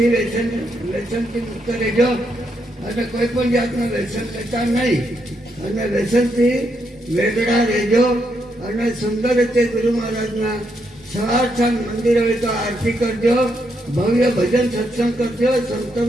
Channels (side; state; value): both; normal; correlation 0.79